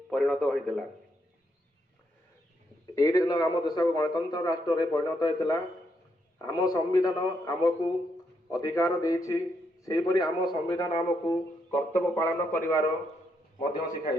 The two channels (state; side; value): normal; both; correlation 0.78